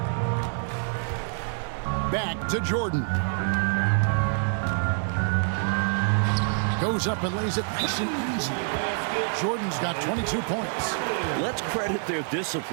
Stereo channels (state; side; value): silent; left; 61 dB below the other